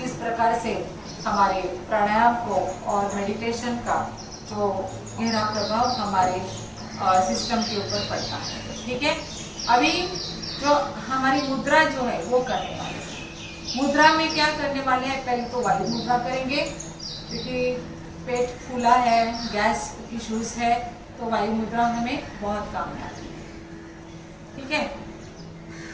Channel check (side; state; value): both; identical; correlation 1.00